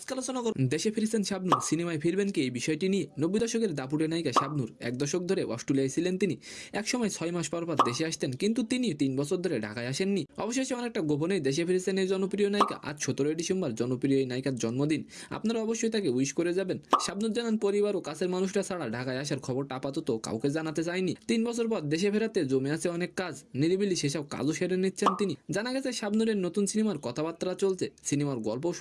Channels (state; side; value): identical; both; correlation 1.00